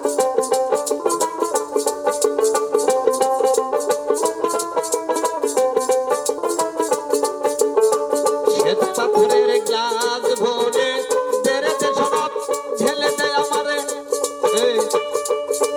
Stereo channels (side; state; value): both; identical; correlation 1.00